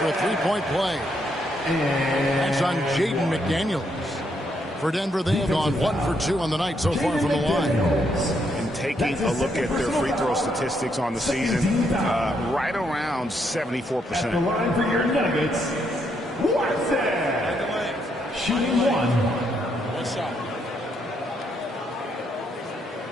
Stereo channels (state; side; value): normal; both; correlation 0.76